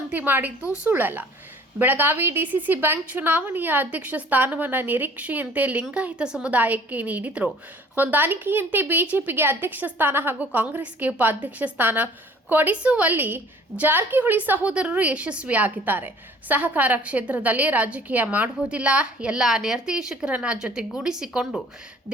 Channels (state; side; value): normal; both; correlation 0.52